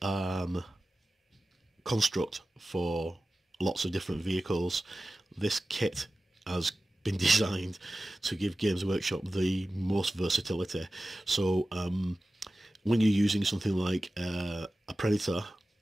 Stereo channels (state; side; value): normal; both; correlation 0.95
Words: construct for lots of different vehicles, this kit has been designed to give Games Workshop the most versatility. So when you're using something like a Predator,